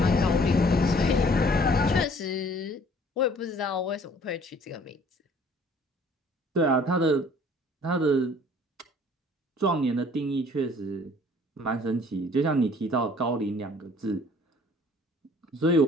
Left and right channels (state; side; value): normal; both; correlation 0.55